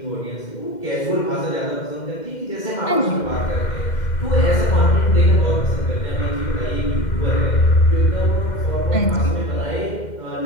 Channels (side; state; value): right; late; 2.1 ms